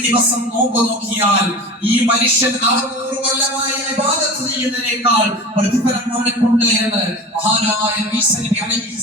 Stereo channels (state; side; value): normal; both; correlation 0.33